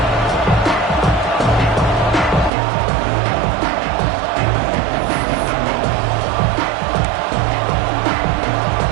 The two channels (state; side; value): drops out; left; at 2.5 s